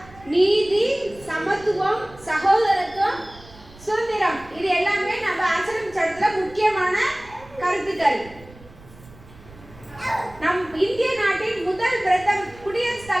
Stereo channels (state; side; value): noise; right; rumble, 21 dB below the sound